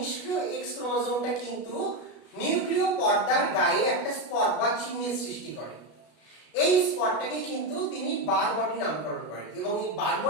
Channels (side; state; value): right; late; 33 ms